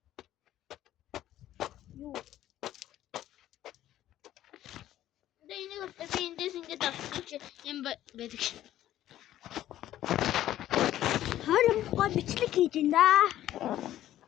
Юу? Анда энийг би эндээс ингэж авчих юм байдаг. Харин гоо бичлэг хийж ин да.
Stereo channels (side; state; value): right; quieter; 13.0 dB